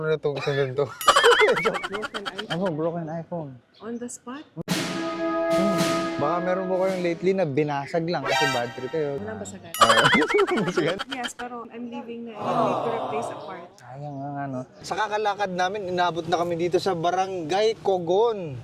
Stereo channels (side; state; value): both; identical; correlation 1.00